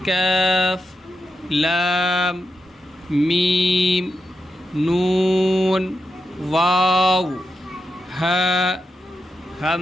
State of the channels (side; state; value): both; normal; correlation 0.87